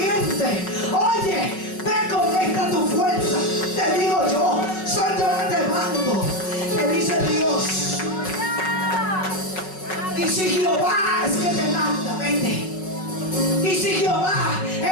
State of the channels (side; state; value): right; late; 5.4 ms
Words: Oye, ve con esta tu fuerza. Te digo yo, soy yo que te mando, te dice Dios. Y si Jehová es que te manda, vete. Y si Jehová